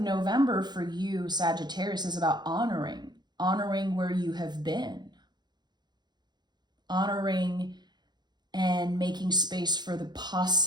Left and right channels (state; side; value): late; left; 0.21 ms